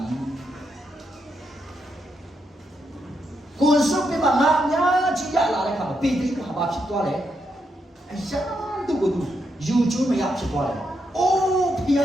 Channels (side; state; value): both; normal; correlation 0.81